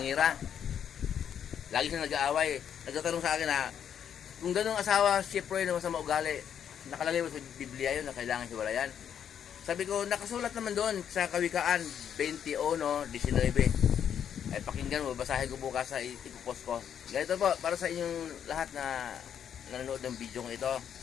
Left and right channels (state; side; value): quieter; right; 8.7 dB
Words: Lagi siya nag-aaway. Nagtatanong sa akin na, kung ganun asawa, Chef Roy na masama ugali, nakalagay mo sa Biblia yun na kailangan hiwalayan. Sabi ko, nakasulat naman doon sa Kawikaan 21:19. Ay pakinggan mo, basahin ko bukas sa ipopost ko. Ganito po, para sa inyong lahat na nanonood ng video ko ito.